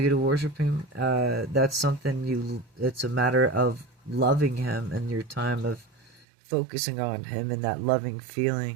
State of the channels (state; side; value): drops out; left; at 6.2 s